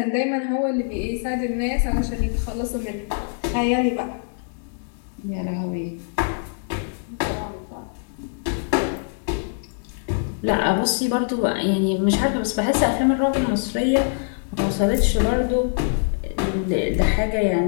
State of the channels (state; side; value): silent; right; digital silence